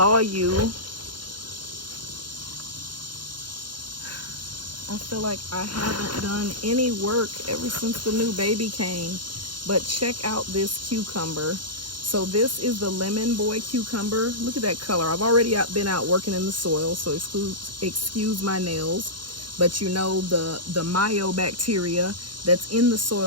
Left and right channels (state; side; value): late; left; 0.71 ms